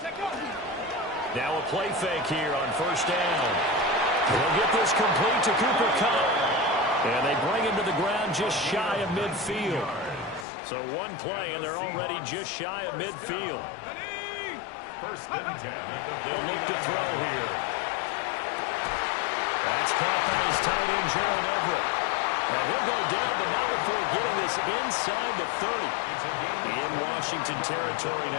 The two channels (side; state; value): right; drops out; at 10.5 s